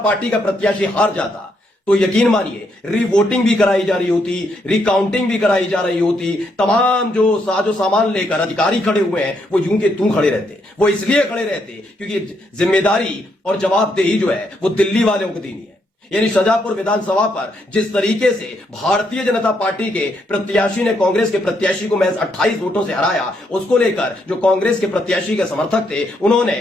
का प्रत्याशी हार जाता तो यकीन मानिए रीवोटिंग भी कराई जा रही होती, रिकाउंटिंग भी कराई जा रही होती। तमाम जो साजो सामान लेकर अधिकारी खड़े हुए हैं वो यूं के तू खड़े रहते। वो इसलिए खड़े रहते क्योंकि जिम्मेदारी और जवाबदेही जो है वो दिल्ली वालों को देनी है। यानी शाजापुर विधानसभा पर जिस तरीके से भारतीय जनता पार्टी के प्रत्याशी ने कांग्रेस के प्रत्याशी को महज 28 वोटों से हराया, उसको लेकर जो कांग्रेस के प्रत्याशी के समर्थक थे उन्होंने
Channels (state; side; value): normal; both; correlation 0.76